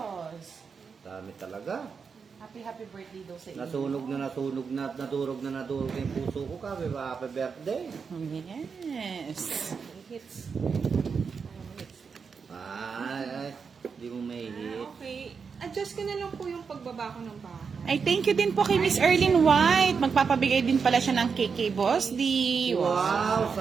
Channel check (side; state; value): left; quieter; 5.7 dB